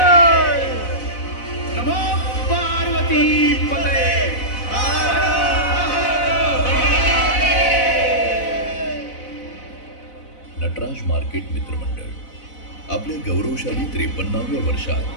नमो पार्वती पते. नटराज मार्केट मित्रमंडळ आपल्या गौरवशाली 53व्या वर्षात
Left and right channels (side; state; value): right; late; 4.0 ms